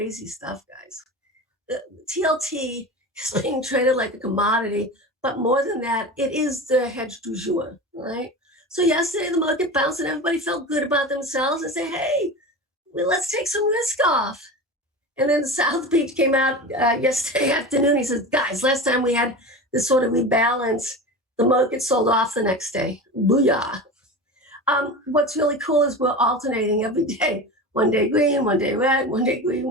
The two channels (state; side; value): normal; both; correlation 0.29